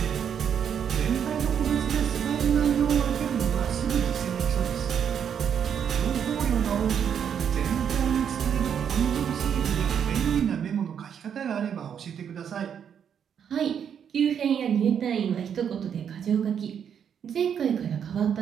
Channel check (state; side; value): quieter; left; 8.1 dB